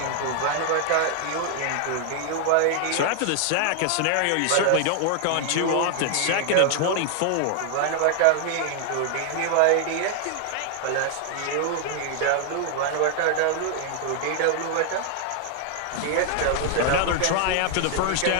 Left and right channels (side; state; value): both; different; correlation 0.00